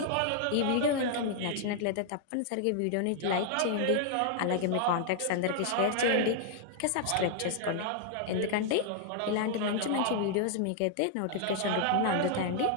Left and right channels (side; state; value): both; different; correlation 0.00